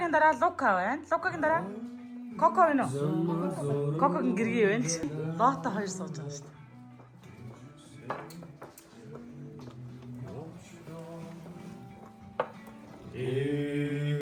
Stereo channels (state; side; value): identical; both; correlation 1.00